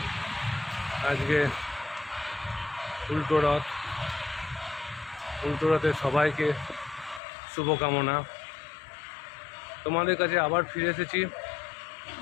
আজকে উল্টো রথে সবাইকে শুভকামনা। তোমাদের কাছে আবার ফিরে এসেছি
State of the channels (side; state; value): right; drops out; at 7.2 s